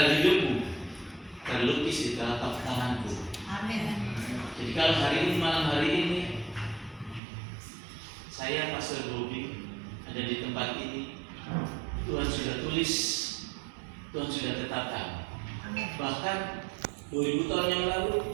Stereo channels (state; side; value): drops out; left; at 7.2 s